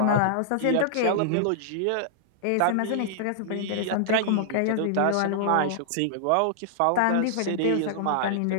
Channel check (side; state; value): both; different; correlation -0.01